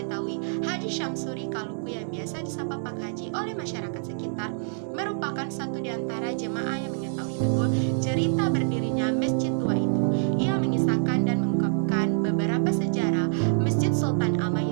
Haji Syamsuri Kaluku yang biasa disapa Pak Haji oleh masyarakat sekitar merupakan satu di antara jemaah yang mengetahui betul cerita berdirinya masjid tua itu. Ia mengisahkan dan mengungkapkan beberapa sejarah Masjid Sultan Amai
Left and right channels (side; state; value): left; silent; digital silence